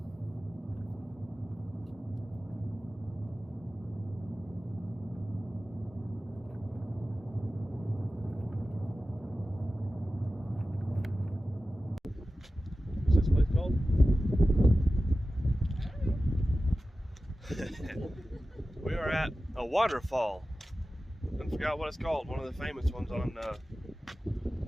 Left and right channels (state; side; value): normal; both; correlation 0.94